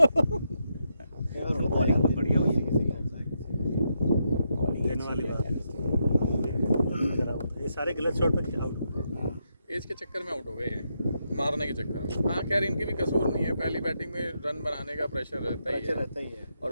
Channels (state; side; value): inverted; both; correlation -0.81